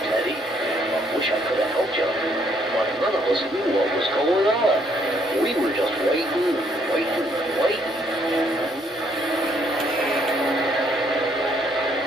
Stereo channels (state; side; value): normal; both; correlation 0.69